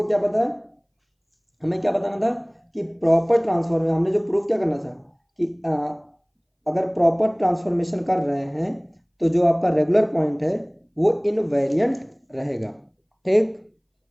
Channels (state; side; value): identical; both; correlation 1.00